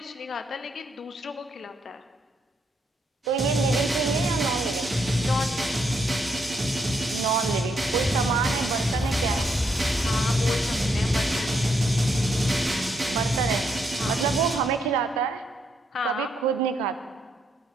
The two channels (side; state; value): both; normal; correlation 0.77